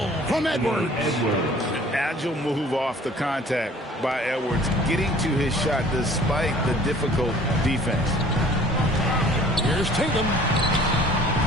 from Edwards. Agile move off the contact by Edwards, getting to his shot despite the difficult defense. Here's Tatum.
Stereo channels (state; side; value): normal; both; correlation 0.51